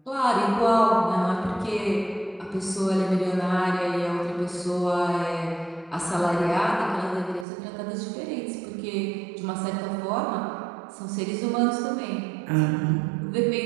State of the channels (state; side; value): drops out; left; at 7.5 s